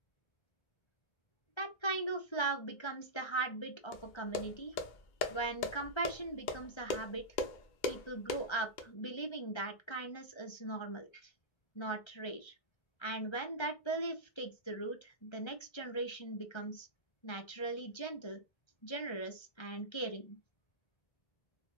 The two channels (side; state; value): right; late; 1.3 ms